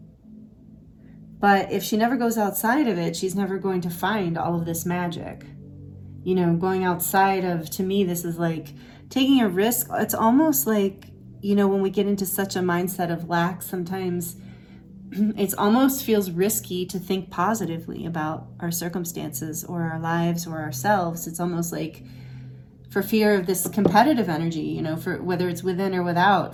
But if she never goes outside of it, she's never going to find all of this magic. You know, going outside of, to me, this is like taking a risk. It's almost like, you know, when we get into such a mindset of lack, sometimes it almost feels risky to think positively about our circumstances or our lives or ourselves. It's almost like for fear of this competitive energy, you know, for whether it's within or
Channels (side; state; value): both; identical; correlation 1.00